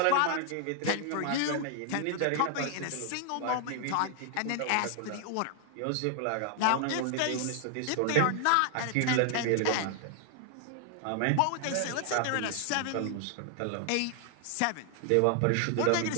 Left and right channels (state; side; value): different; both; correlation 0.00